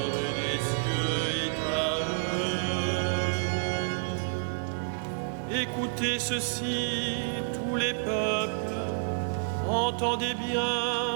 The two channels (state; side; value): silent; left; 58 dB below the other